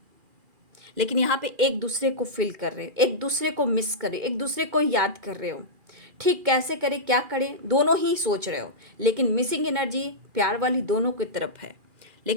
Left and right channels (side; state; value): left; late; 2.4 ms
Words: लेकिन यहाँ पे एक दूसरे को फील कर रहे हो, एक दूसरे को मिस कर रहे हो, एक दूसरे को याद कर रहे हो। ठीक कैसे करें, क्या करें, दोनों ही सोच रहे हो, लेकिन मिसिंग एनर्जी प्यार वाली दोनों की तरफ है।